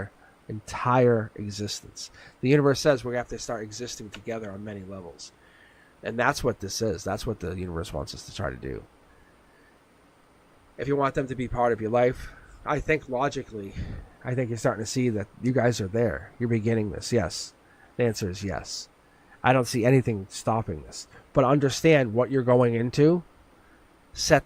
entire existence. The universe says we're going to have to start existing together on many levels. And that's what this is. That's what the universe wants us to try to do. If you want them to be part of your life, I think logically, I think you're starting to see that you guys are there. You're beginning this. Yes. The answer is yes. I don't see anything stopping this. But understand what you're going into.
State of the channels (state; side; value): identical; both; correlation 1.00